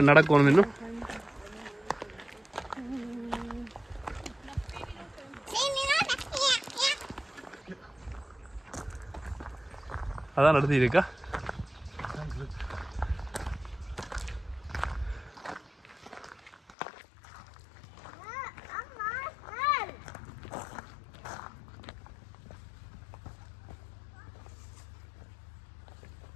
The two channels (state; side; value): drops out; right; at 16.7 s